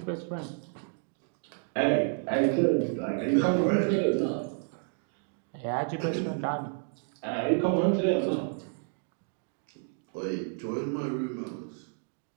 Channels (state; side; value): silent; left; 58 dB below the other